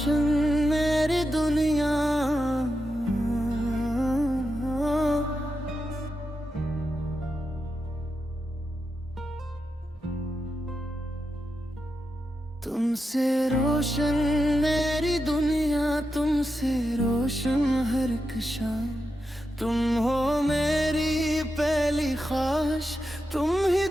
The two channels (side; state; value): both; normal; correlation 0.88